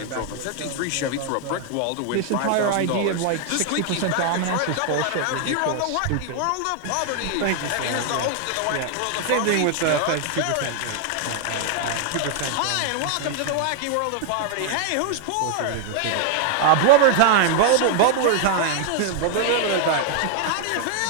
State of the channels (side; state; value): both; different; correlation 0.00